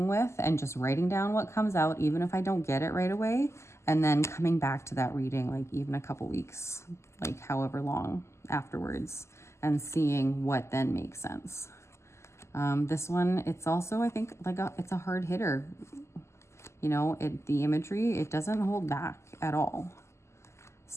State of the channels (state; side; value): late; right; 0.13 ms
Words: with and just writing down what comes out, even if I don't get it right away, and then coming back to that reading like even a couple weeks, like however long afterwards, and seeing what then makes sense. This one, it's also, I think, like it's a hard hitter. You know, the imagery, it doesn't hold back at all.